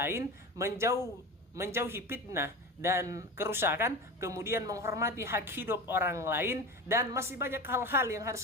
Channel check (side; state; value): both; normal; correlation 0.28